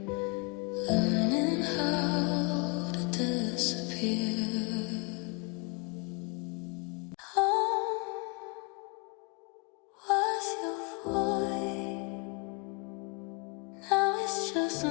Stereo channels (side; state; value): right; quieter; 30.8 dB